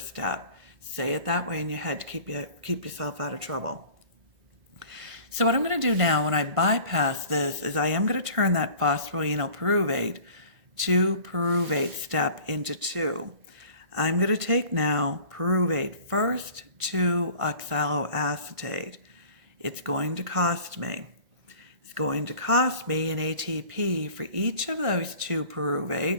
Say it that way in your head to keep yourself out of trouble. So what I'm going to do now when I bypass this is I am going to turn that phosphoenol pyruvate to pyruvate step into 2. I'm going to take now pyruvate first to oxaloacetate. It's going to cost me. It's going to cost me an ATP for each of those 2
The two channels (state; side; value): late; left; 1.5 ms